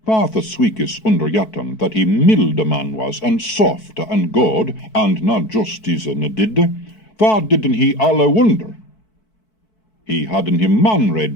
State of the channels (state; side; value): late; right; 4.6 ms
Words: Father Sweekis under Jatan, that he milde man was, and soft and good, and not justice ne didde, vad didden he alle wonder? He hadden him manred